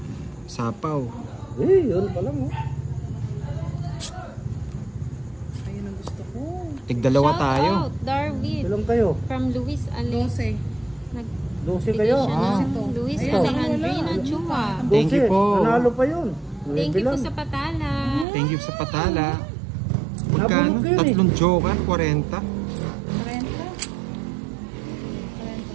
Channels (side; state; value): left; drops out; at 18.2 s